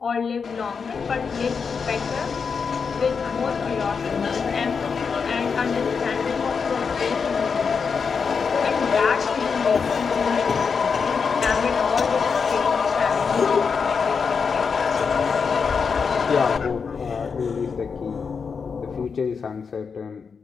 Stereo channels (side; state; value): right; quieter; 5.7 dB